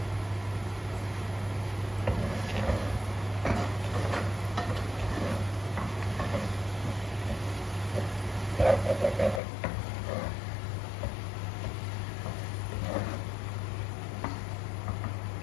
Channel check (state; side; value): drops out; right; at 9.4 s